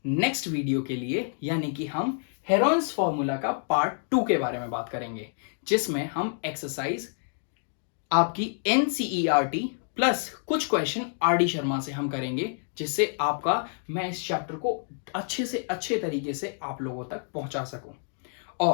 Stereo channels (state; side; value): silent; right; digital silence